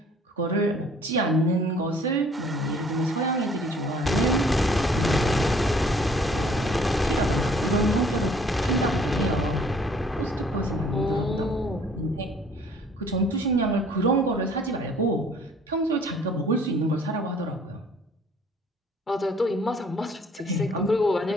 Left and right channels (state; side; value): normal; both; correlation 0.57